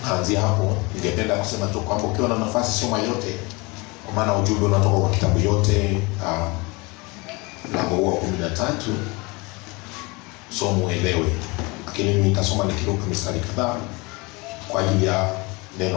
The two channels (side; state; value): right; quieter; 26.2 dB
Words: Tunaanzia hapo. Ningependa kusema tu kwamba ukiwa na nafasi soma yote, kwa maana ujumbe unatoka kwa kitabu yote. Mlango wa 13 somo uelewe, lakini mimi nitasoma nikiruka mistari kadhaa kwa ajili ya